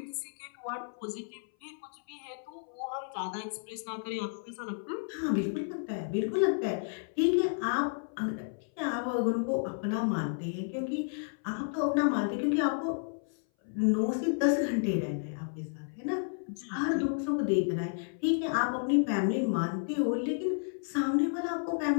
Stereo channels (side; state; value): right; silent; 57 dB below the other